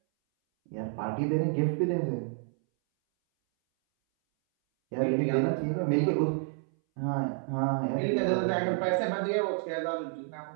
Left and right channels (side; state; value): left; silent; 58 dB below the other